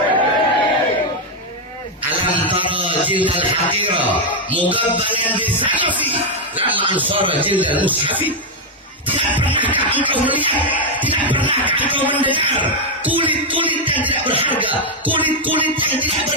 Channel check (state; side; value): normal; both; correlation 0.02